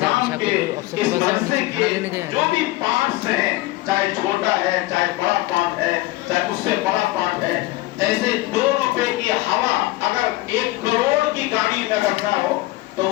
کے اس مدرسے کے جو بھی پارٹس ہیں، چاہے چھوٹا ہے چاہے بڑا پارٹ ہے چاہے اس سے بڑا پارٹ ہے، جیسے 2 روپے کی ہوا اگر 1 کروڑ کی گاڑی میں کرنا ہو تو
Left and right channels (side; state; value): right; quieter; 19.0 dB